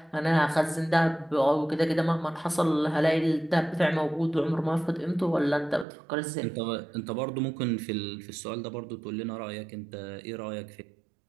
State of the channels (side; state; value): left; drops out; at 5.9 s